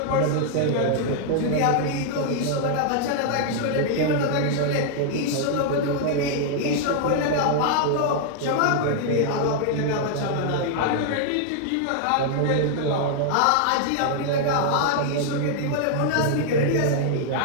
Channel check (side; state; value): both; different; correlation 0.00